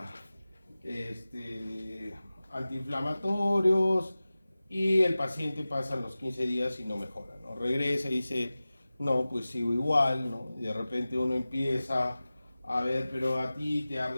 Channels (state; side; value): inverted; both; correlation -0.97